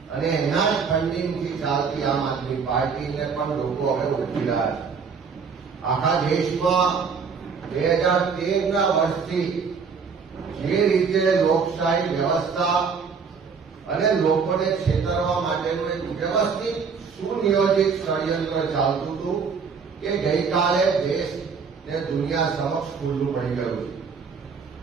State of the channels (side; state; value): left; quieter; 5.7 dB